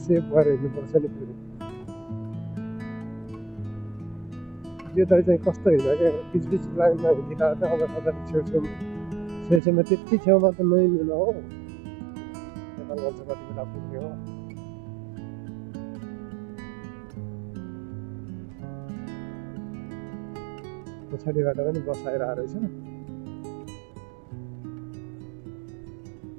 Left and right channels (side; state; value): left; drops out; at 9.6 s